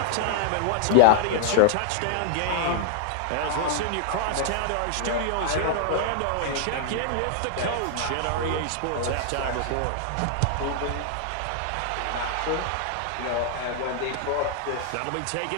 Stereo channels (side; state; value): both; different; correlation 0.00